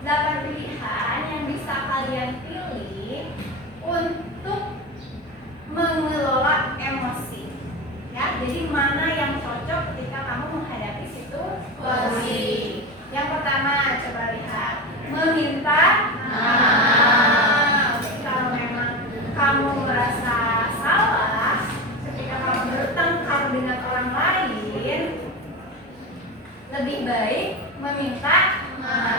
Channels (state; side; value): normal; both; correlation 0.23